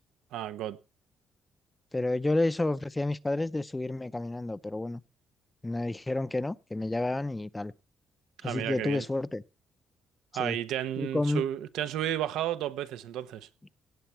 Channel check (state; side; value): normal; both; correlation 0.82